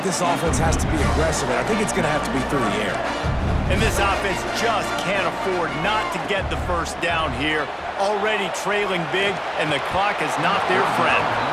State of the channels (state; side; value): identical; both; correlation 1.00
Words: this offense has to be aggressive, and I think it's going to have to be through the air. And this offense just can't afford not to get the 1st down here. Already trailing big, and the clock is not their friend.